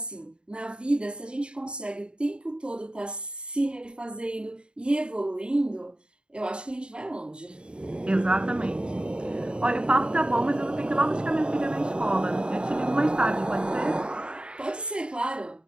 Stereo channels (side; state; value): left; late; 0.052 ms